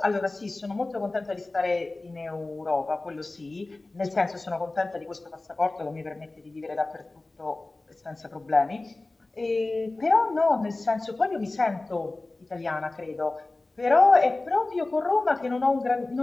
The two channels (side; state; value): right; quieter; 3.1 dB